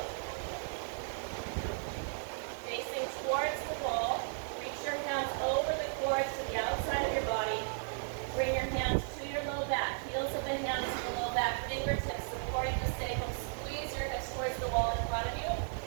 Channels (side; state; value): left; silent; digital silence